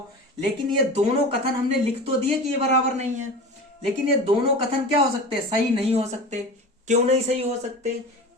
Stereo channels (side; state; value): both; normal; correlation 0.33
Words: लेकिन ये दोनों कथन हमने लिख तो दिए कि ये बराबर नहीं है, लेकिन ये दोनों कथन क्या हो सकते हैं, सही नहीं हो सकते। क्यों नहीं सही हो सकते?